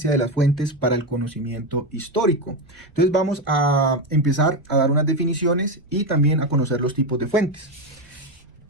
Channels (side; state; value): right; noise; rumble, 29 dB below the sound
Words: de las fuentes para el conocimiento histórico? Entonces vamos a empezar a dar unas definiciones y también a conocer los tipos de fuentes.